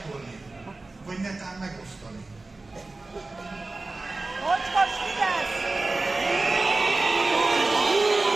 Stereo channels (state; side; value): quieter; left; 3.3 dB